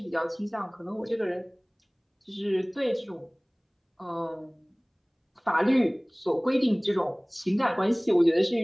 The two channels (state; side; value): identical; both; correlation 1.00